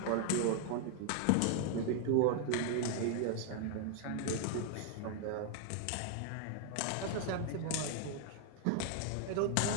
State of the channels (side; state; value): both; different; correlation 0.00